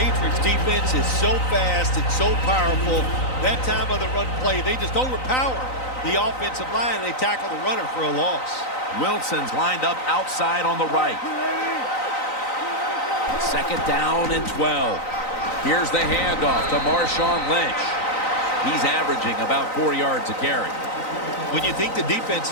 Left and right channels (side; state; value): right; late; 3.9 ms